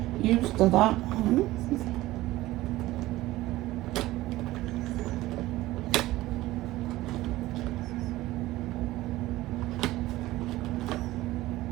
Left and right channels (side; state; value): left; quieter; 17.2 dB